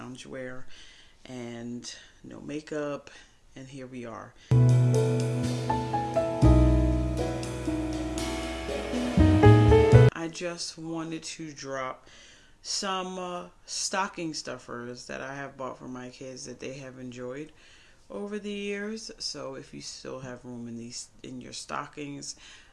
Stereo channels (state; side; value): identical; both; correlation 1.00